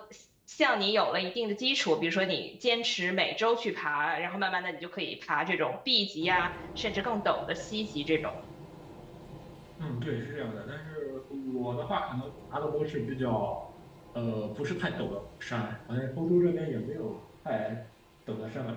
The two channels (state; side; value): identical; both; correlation 1.00